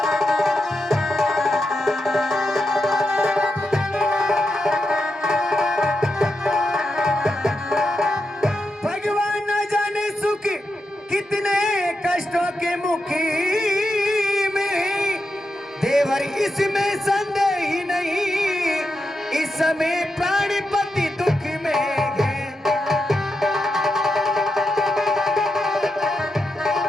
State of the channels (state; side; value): normal; both; correlation 0.86